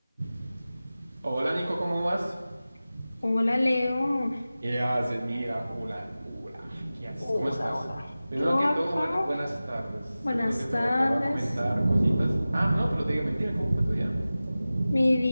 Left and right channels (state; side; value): inverted; both; correlation -0.96